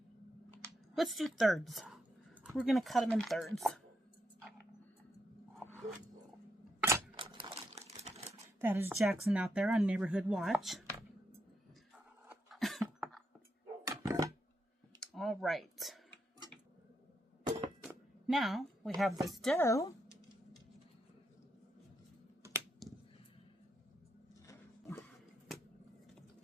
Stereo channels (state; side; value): normal; both; correlation 0.81